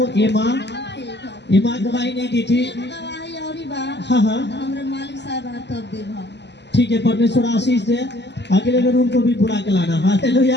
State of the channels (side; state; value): right; late; 0.50 ms